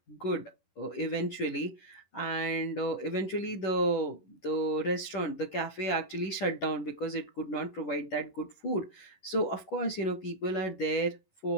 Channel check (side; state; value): right; late; 11 ms